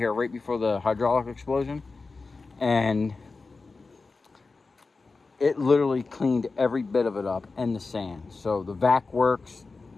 right before the hydraulic explosion. And it literally cleaned every bit of it up and the sand. So the vac works,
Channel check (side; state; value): right; quieter; 4.0 dB